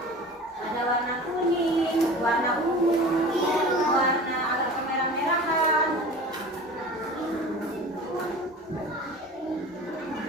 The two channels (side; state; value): both; normal; correlation 0.38